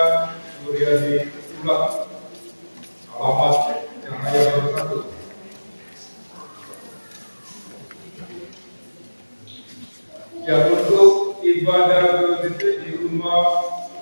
Suryadi Ulang, alamat Cahaya Baru 1. Ya, untuk ibadah PKBGT di rumah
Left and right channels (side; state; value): both; inverted; correlation -1.00